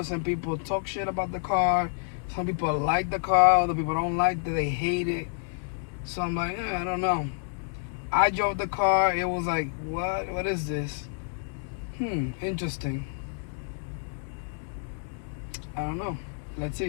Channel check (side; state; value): right; silent; digital silence